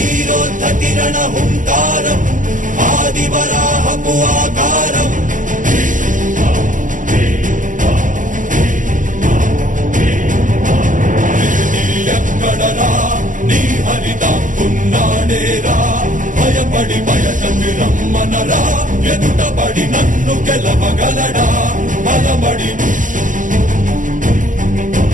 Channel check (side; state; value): left; late; 0.38 ms